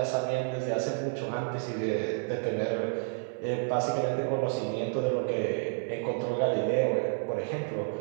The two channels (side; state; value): left; silent; 58 dB below the other